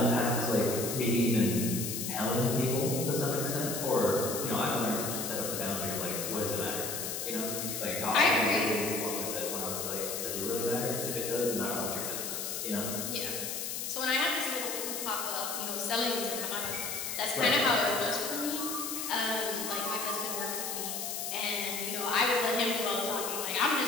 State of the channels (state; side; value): noise; left; hiss, 3 dB below the sound